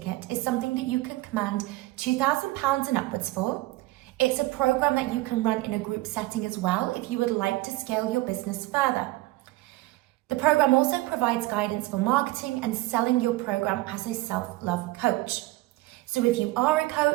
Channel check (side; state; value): left; quieter; 19.4 dB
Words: is something that you can command £2,000 and upwards for. It's a program that you can run in a group setting as well if you would like to scale your business further. The program also provides guidance for marketing and selling your program as a self-love coach. So if you are a